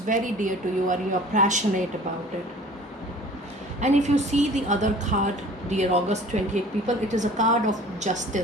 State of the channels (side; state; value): both; normal; correlation 0.47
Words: dear to you and you are passionate about it. And if you see the other card, dear August 28 people, it is a card of